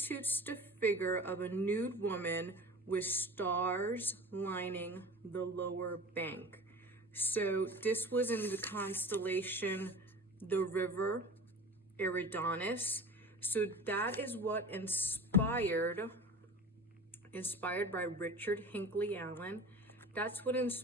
the figure of a nude woman with stars lining the lower bank. So this was in the constellation, the river Eridanus. So that is what inspired by Richard Hinckley Allen. That's what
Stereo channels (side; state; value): both; normal; correlation 0.36